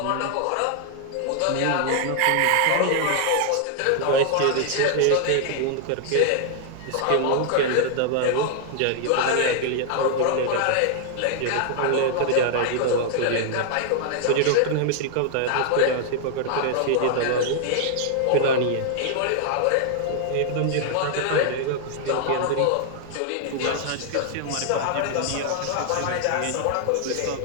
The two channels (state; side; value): different; both; correlation 0.00